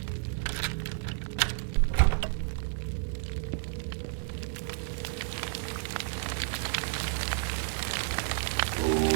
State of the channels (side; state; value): left; silent; 57 dB below the other